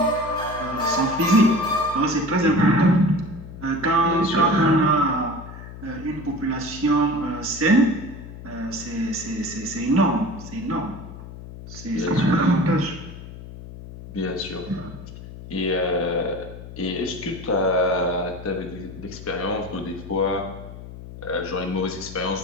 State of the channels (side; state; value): left; noise; hum, 13 dB below the sound